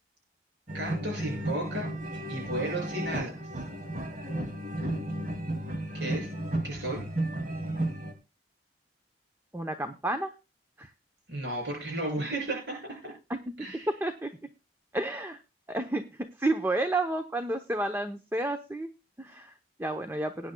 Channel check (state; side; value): normal; both; correlation 0.64